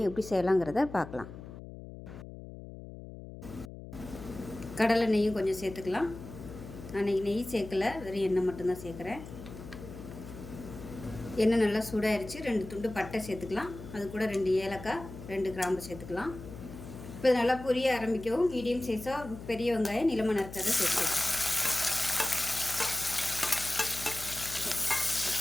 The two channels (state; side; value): noise; left; hum, 13 dB below the sound